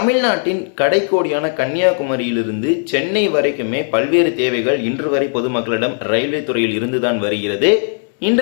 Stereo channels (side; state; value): right; silent; 61 dB below the other